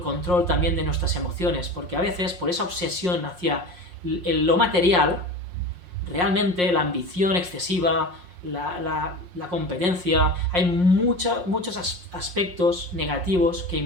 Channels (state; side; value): late; left; 5.6 ms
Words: control también de nuestras emociones, porque a veces, por esa obsesión hacia lo material, realmente la ambición excesiva, la competencia, hay muchos aspectos negativos que